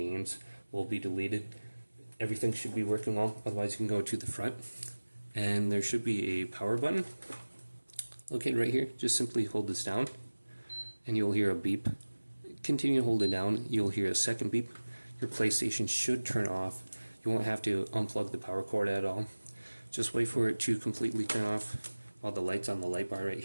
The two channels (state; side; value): inverted; both; correlation -1.00